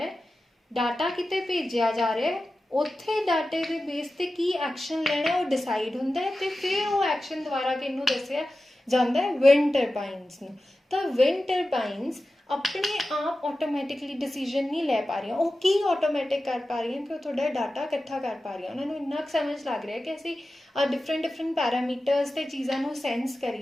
ਹੈ, ਡਾਟਾ ਕਿਤੇ ਭੇਜਿਆ ਜਾ ਰਿਹਾ, ਉੱਥੇ ਡਾਟੇ ਦੇ ਬੇਸ 'ਤੇ ਕੀ ਐਕਸ਼ਨ ਲੈਣਾ ਉਹ ਡਿਸਾਈਡ ਹੁੰਦਾ ਹੈ ਤੇ ਫਿਰ ਉਹ ਐਕਸ਼ਨ ਦੁਆਰਾ ਕਿਹਨੂੰ ਦੱਸਿਆ ਜਾਂਦਾ ਹੈ, ਵਿੰਡ ਟਰਬਾਈਨਸ ਨੂੰ। ਤਾਂ ਵਿੰਡ ਟਰਬਾਈਨਸ ਆਪਣੇ ਆਪ ਆਟੋਮੈਟਿਕਲੀ ਡਿਸੀਜਨ ਨਹੀਂ ਲੈ ਪਾ ਰਹੀਆਂ। ਉਹ ਕੀ ਆਟੋਮੈਟਿਕ ਕਰ ਪਾ ਰਹੀਆਂ ਕਿ ਉਹ ਤੁਹਾਡਾ ਡਾਟਾ ਇਕੱਠਾ ਕਰ ਪਾ ਰਹੀਆਂ। ਉਹਨਾਂ ਨੂੰ ਇੰਨਾ ਕੁ ਸਮਝ ਲੱਗ ਰਿਹਾ ਕਿ ਅਸੀਂ ਡਿਫਰੈਂਟ ਪੈਰਾਮੀਟਰਸ ਤੇ ਚੀਜ਼ਾਂ ਨੂੰ ਸੈਂਸ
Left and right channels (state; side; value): normal; both; correlation 0.94